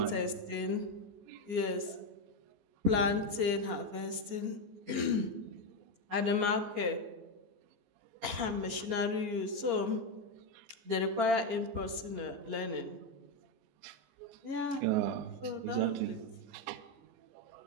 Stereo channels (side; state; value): left; late; 15 ms